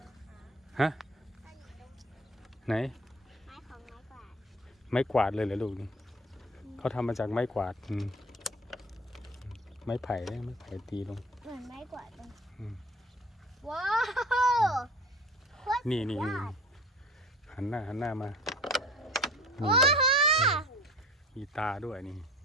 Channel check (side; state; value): both; normal; correlation 0.42